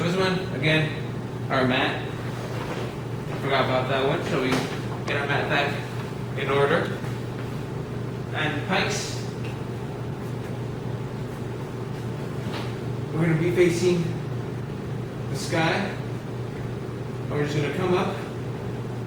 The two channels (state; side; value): identical; both; correlation 1.00